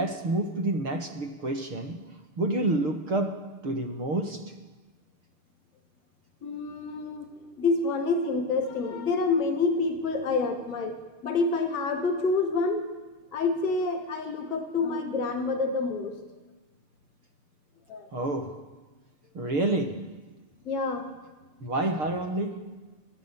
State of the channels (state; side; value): late; left; 6.7 ms